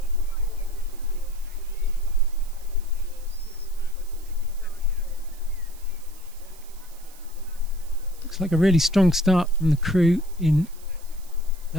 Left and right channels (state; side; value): noise; right; hiss, 23 dB below the sound